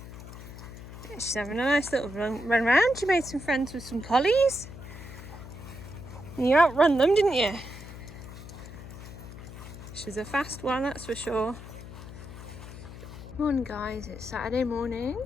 She's having a nice little run round. She made some friends with some collies. And you outrun them, didn't you? She's a fast one, that's for sure. Morning guys, it's Saturday morning.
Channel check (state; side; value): noise; left; hum, 13 dB below the sound